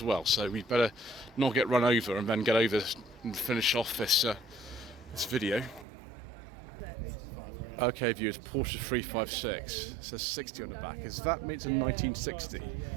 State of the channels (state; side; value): drops out; left; at 5.9 s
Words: well, so we'd better not get run over and then get over and finish off this this video. Okay, viewers, Porsche 356. It says 60 on the back. Does that mean it's a 1960,